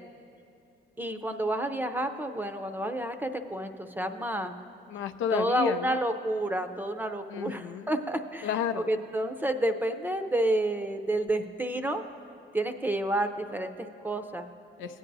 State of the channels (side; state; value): both; normal; correlation 0.68